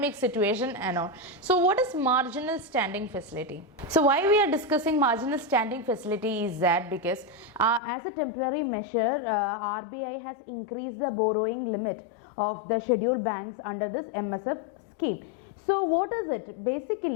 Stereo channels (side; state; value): right; drops out; at 7.8 s